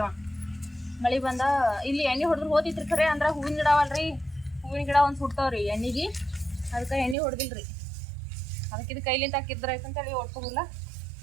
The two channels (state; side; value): drops out; left; at 7.2 s